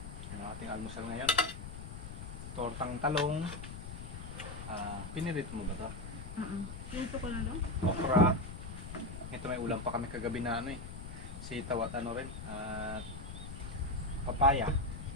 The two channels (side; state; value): left; noise; rumble, 9 dB below the sound